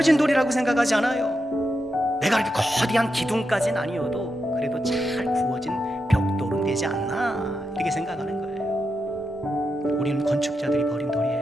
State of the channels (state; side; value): normal; both; correlation 0.86